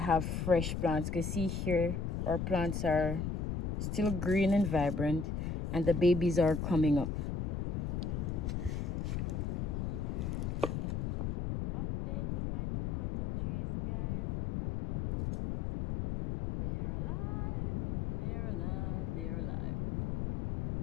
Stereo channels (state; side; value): noise; left; rumble, 1 dB below the sound